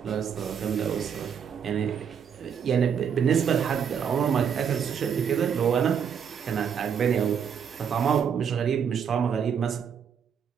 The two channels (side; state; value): left; quieter; 7.5 dB